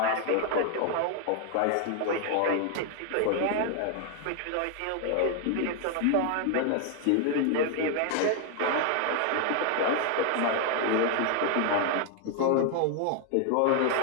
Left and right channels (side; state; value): both; different; correlation 0.00